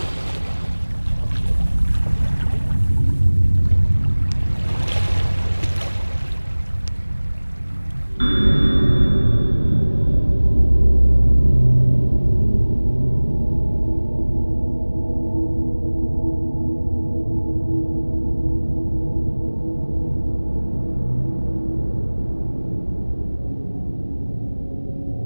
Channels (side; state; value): both; inverted; correlation -1.00